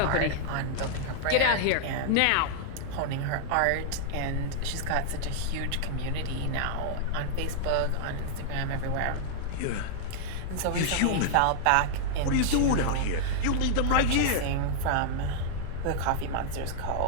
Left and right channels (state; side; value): different; both; correlation -0.01